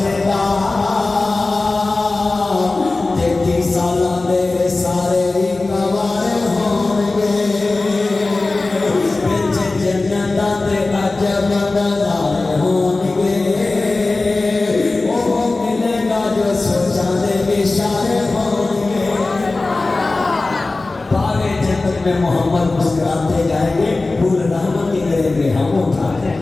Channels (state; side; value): quieter; right; 3.3 dB